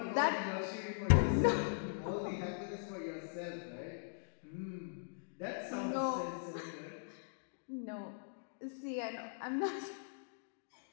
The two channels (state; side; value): silent; right; digital silence